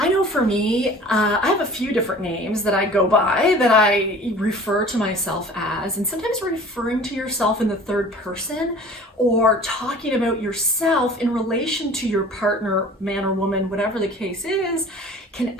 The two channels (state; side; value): normal; both; correlation 0.45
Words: know for me, I have a few different names that I go by, that I refer to myself as, and sometimes referring to yourself in the third person or talking about yourself in relation to your partner, man or woman, whatever the case is, can